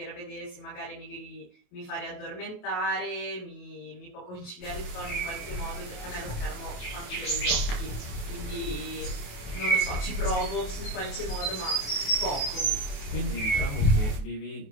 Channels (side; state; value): right; late; 28 ms